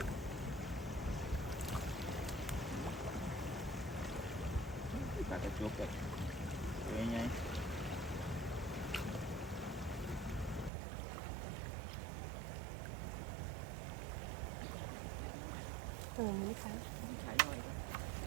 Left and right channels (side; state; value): left; drops out; at 10.7 s